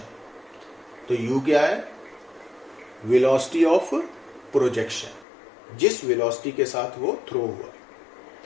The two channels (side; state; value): right; drops out; at 5.2 s